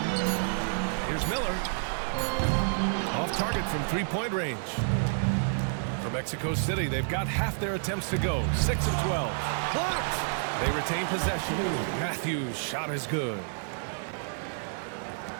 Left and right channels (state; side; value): silent; left; digital silence